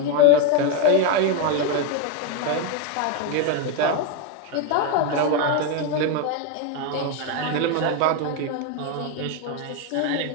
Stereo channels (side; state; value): both; different; correlation 0.02